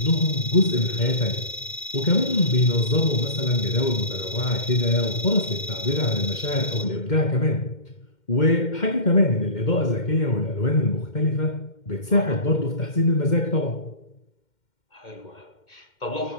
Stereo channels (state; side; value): late; right; 2.1 ms